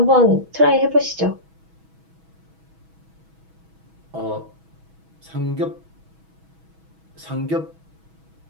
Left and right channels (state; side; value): late; left; 6.2 ms